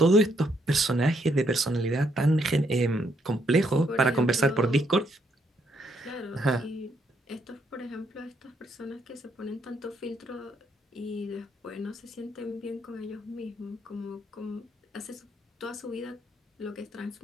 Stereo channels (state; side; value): normal; both; correlation 0.74